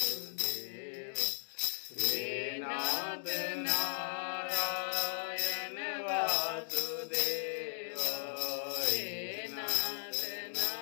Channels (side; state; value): right; silent; digital silence